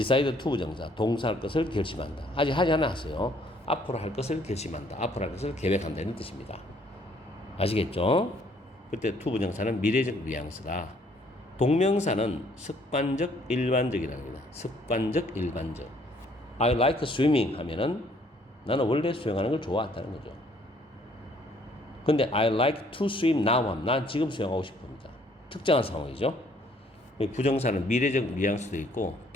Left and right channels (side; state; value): both; normal; correlation 0.63